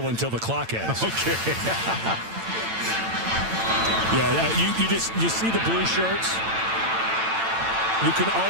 until the clock ends. Okay. Yeah, you see the blue shirts. You can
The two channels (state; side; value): late; left; 8.9 ms